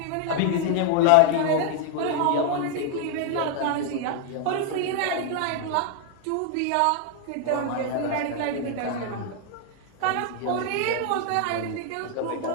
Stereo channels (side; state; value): both; different; correlation 0.01